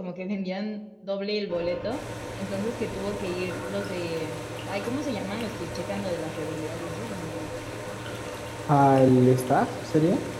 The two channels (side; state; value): both; identical; correlation 1.00